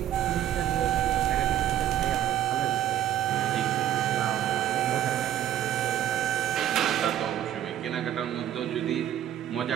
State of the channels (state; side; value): quieter; left; 11.3 dB